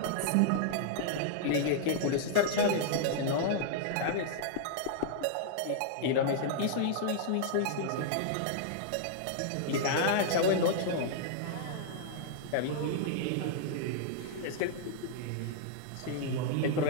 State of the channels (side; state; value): both; different; correlation -0.01